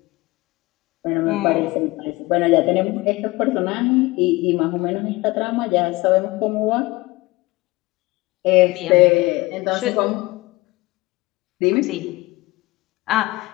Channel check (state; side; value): quieter; right; 21.3 dB